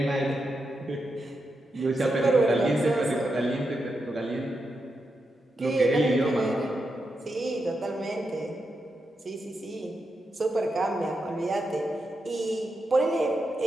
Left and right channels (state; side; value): normal; both; correlation 0.86